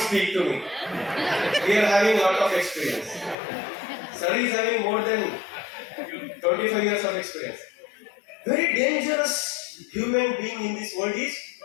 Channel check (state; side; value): drops out; right; at 3.4 s